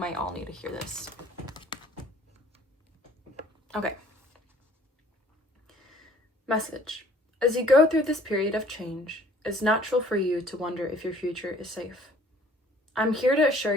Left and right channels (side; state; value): both; normal; correlation 0.56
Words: all need to hear this. Okay. Message. As you go through this period of change, it's natural for you to wonder if your future is safe. I'm here to assure